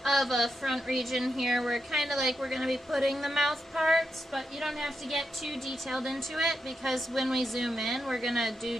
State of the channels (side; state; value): both; normal; correlation 0.85